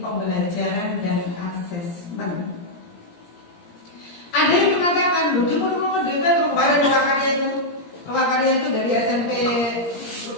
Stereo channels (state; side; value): late; right; 17 ms